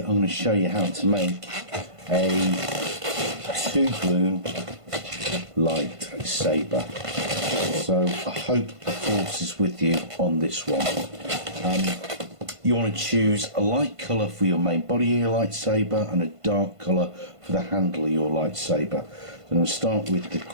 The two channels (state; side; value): late; left; 1.5 ms